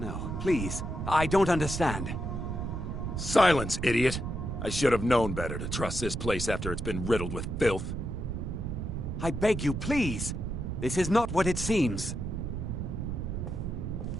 please. I don't understand. Silence, idiot. I should have known better to trust this place after it's been riddled with filth. I beg you, please. This is not what it seems.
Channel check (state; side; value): noise; right; rumble, 4 dB below the sound